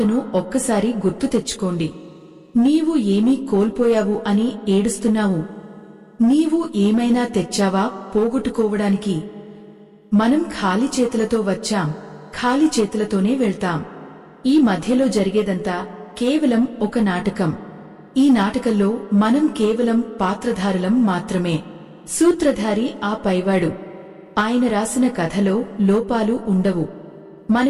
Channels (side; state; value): both; identical; correlation 1.00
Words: ఒక్కసారి గుర్తు తెచ్చుకోండి. నీవు ఏమీ కోల్పోయావు అని ఏడుస్తున్నావు. నీవు ఏమైనా తెచ్చావా పోగొట్టుకోవడానికి? మనం ఖాళీ చేతులతో వచ్చాం, ఖాళీ చేతులతోనే వెళ్తాం. ఈ మధ్యలో జరిగేదంతా కేవలం ఒక నాటకం. ఈ నాటకంలో మనం కేవలం పాత్రధారులం మాత్రమే. సూత్రధారి ఆ పైవాడు. ఆయన రాసిన కథలో లోపాలు ఉండవు.